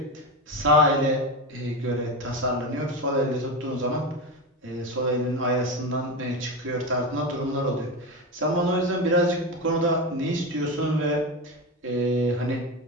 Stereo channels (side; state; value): both; normal; correlation 0.19